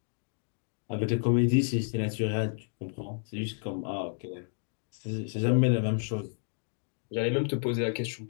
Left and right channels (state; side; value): silent; right; 57 dB below the other